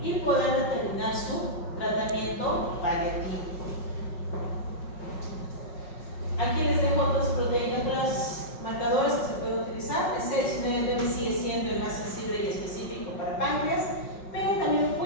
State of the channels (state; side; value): late; right; 5.4 ms